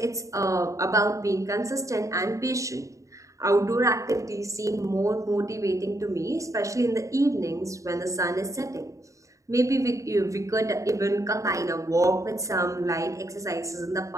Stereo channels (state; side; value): late; left; 0.15 ms